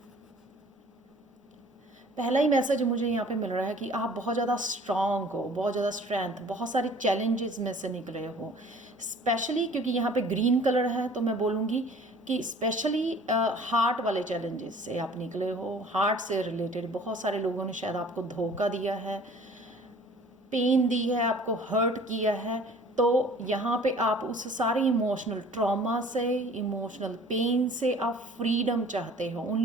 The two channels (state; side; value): normal; both; correlation 0.50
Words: पहला ही मैसेज मुझे यहाँ पे मिल रहा है कि आप बहुत ज़्यादा स्ट्रॉन्ग हो, बहुत ज़्यादा स्ट्रेंथ, बहुत सारे चैलेंजेस में से निकले हो। स्पेशली क्योंकि यहाँ पे ग्रीन कलर है तो मैं बोलूँगी कि स्पेशली हार्ट वाले चैलेंजेस से आप निकले हो। हार्ट से रिलेटेड बहुत सारे लोगों ने शायद आपको धोखा दिया है, पेन दी है, आपको हर्ट किया है। तो यहाँ पे आप उस सारे इमोशनल ट्रॉमा से, इमोशनल पेन से आप फ्रीडम चाहते हो।